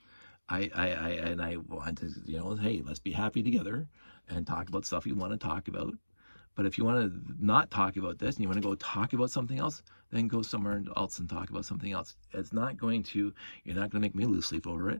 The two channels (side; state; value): both; inverted; correlation -1.00